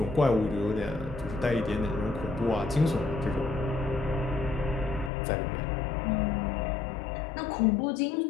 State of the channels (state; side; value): drops out; right; at 5.1 s